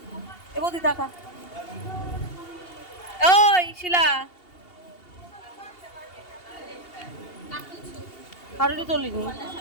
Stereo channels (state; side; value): late; right; 2.8 ms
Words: এ বৌদি দেখা, ওই শিলা হারুলি তোলিনি।